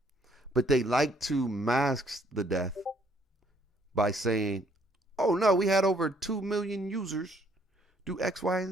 But they like to mask the death by saying, oh no, we had over 2 million users do X, Y,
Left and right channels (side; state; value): both; normal; correlation 0.66